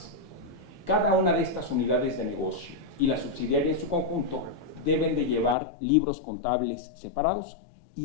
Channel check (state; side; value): drops out; right; at 5.6 s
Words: Cada una de estas unidades de negocio y la subsidiaria en su conjunto deben de llevar libros contables separados